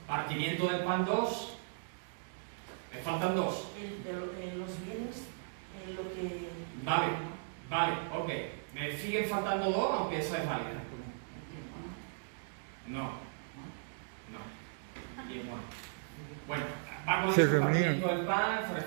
Partimiento del pan 2. Me faltan 2. Los bienes, lo que... Vale, ok. Me siguen faltando 2, aunque esa es válida. No. Bien, bueno, va con Se el reunían. partimiento del pan, se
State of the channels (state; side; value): silent; left; digital silence